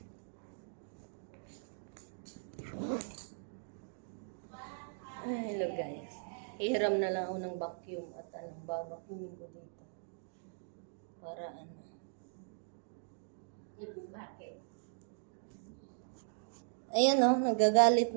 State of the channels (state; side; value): silent; left; digital silence